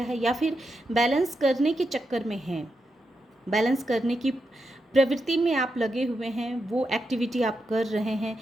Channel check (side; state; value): both; normal; correlation 0.86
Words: है, या फिर बैलेंस करने के चक्कर में हैं, बैलेंस करने की प्रवृत्ति में आप लगे हुए हैं, वो एक्टिविटी आप कर रहे हैं